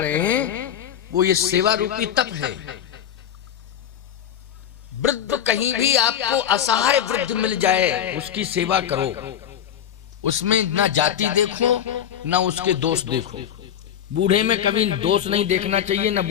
हैं वो ये सेवा रूपी तप है। वृद्ध कहीं भी आपको असहाय वृद्ध मिल जाए उसकी सेवा करो, उसमें ना जाति देखो ना उसके दोष देखो। बूढ़े में कभी दोष नहीं देखना चाहिए, ना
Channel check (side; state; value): right; quieter; 9.6 dB